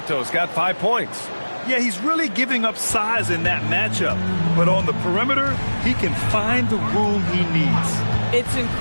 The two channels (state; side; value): inverted; both; correlation -1.00